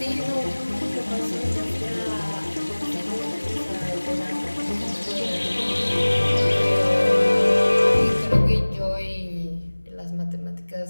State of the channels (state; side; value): inverted; both; correlation -1.00